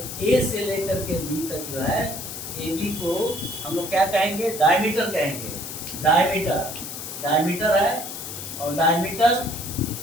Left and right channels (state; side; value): noise; left; hiss, 8 dB below the sound